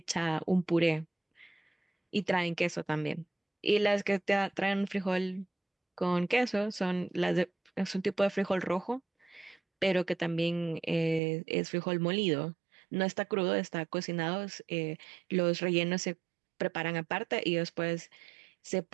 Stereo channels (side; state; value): left; drops out; at 11.2 s